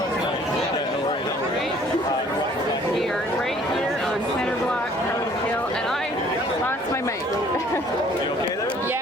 We are right here on Center Block, Parliament Hill, and I lost my mic. You okay there?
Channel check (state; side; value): normal; both; correlation 0.57